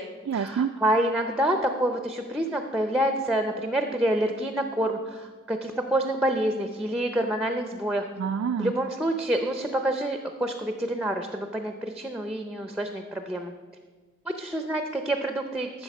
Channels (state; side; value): normal; both; correlation 0.63